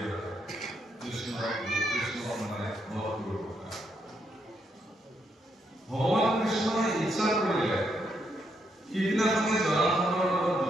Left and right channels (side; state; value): both; normal; correlation 0.78